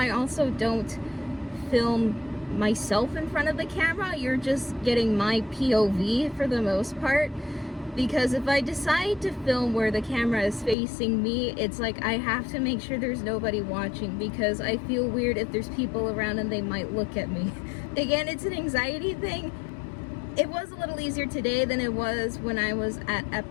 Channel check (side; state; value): right; drops out; at 10.8 s